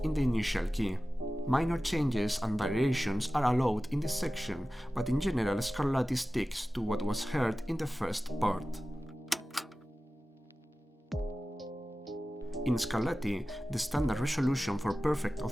in the initial key. Minor changes and variations are allowed in this section, but in general Scarlatti sticks to what was heard in the first part. In Scarlatti, the standard resolution for perfect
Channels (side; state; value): both; normal; correlation 0.96